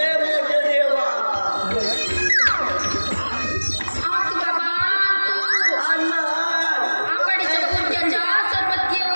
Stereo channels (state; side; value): inverted; both; correlation -1.00